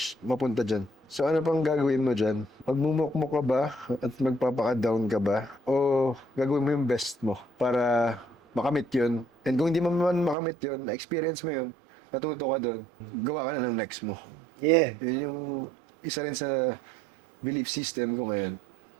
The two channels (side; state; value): left; drops out; at 10.4 s